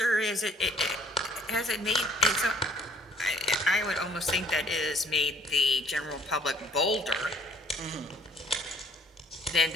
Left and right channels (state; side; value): normal; both; correlation 0.58